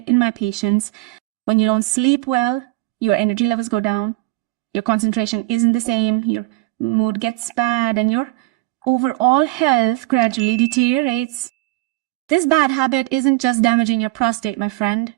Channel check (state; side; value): quieter; left; 20.4 dB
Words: in my patients. When you don't sleep well, your energy levels go down, your concentration isn't the same, your mood gets bad, and your overall health gradually deteriorates. This bad habit isn't just damaging your prostate, my friend.